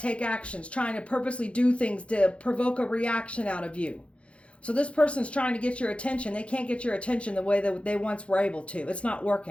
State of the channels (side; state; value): right; late; 0.061 ms